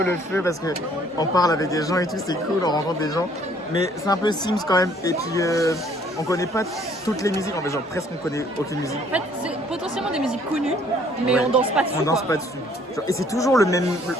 le feu parce que on parle avec des gens et tout, c'est cool, on rencontre des gens. Mais c'est un peu Sims quand même. Et puis on connaît pas toutes les musiques, en fait genre presque on connaît aucune musique. En fait, c'est potentiellement des musiques connues, mais Ouais. on danse pas dessus. On danse pas dessus. Genre, et c'est toujours le même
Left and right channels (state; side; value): normal; both; correlation 0.61